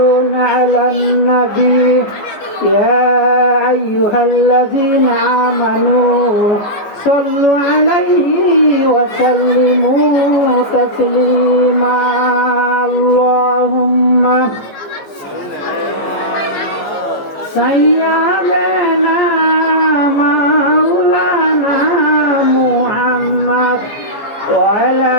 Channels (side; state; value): right; late; 14 ms